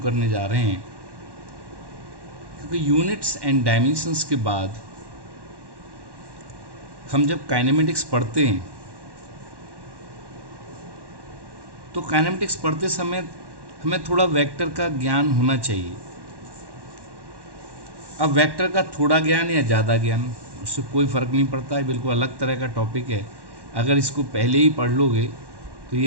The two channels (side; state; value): left; late; 1.1 ms